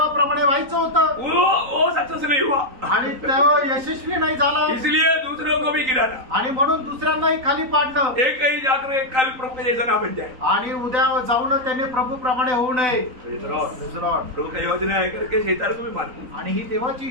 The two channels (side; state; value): left; late; 3.9 ms